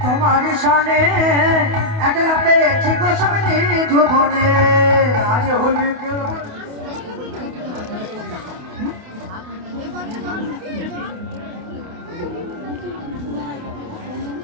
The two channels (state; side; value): late; left; 28 ms